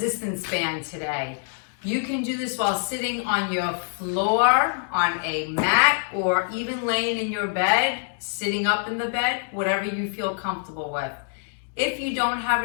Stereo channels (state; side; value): silent; right; digital silence